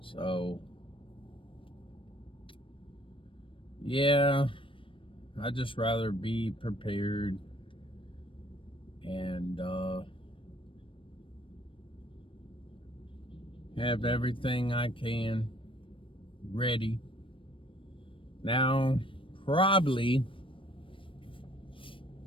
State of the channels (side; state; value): right; late; 0.25 ms